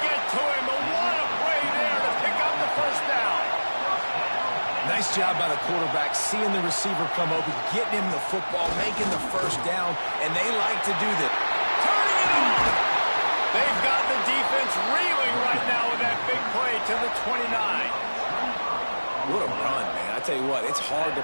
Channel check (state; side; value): inverted; both; correlation -1.00